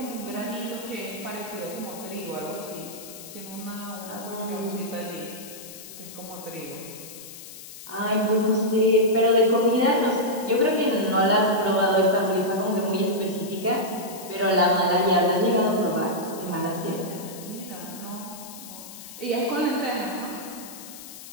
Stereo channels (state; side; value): noise; left; hiss, 14 dB below the sound